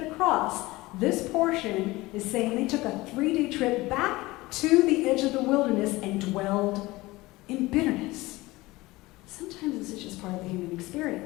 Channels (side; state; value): right; quieter; 20.2 dB